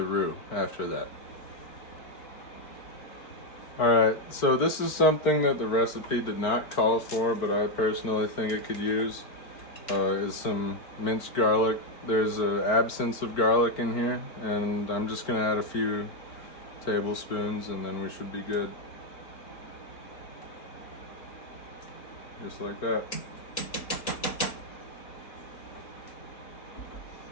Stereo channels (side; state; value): right; late; 4.5 ms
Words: roux after that. Alright, so this is something that the recipe did not call for, but I personally think it could use, is some minced garlic. There's an absence of garlic in here, and I'm just going to add a few tablespoons, and then we should be good. Just like that.